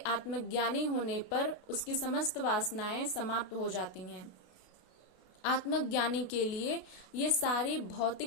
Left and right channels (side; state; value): right; late; 32 ms